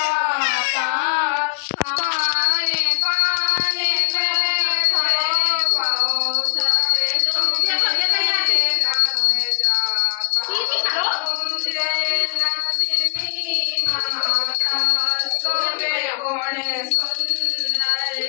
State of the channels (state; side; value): quieter; right; 31.2 dB